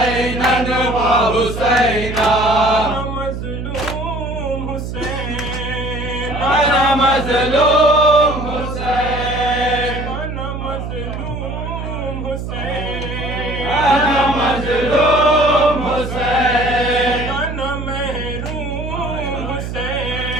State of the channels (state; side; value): noise; right; hum, 6 dB below the sound